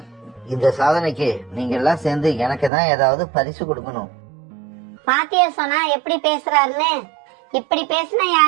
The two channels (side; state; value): left; drops out; at 2.7 s